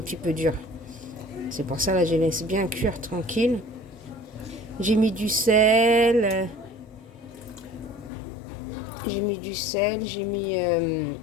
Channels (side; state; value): right; drops out; at 8.1 s